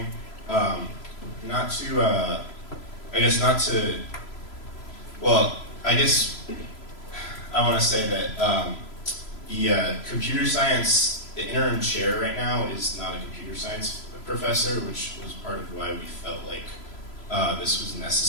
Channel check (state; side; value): late; right; 3.0 ms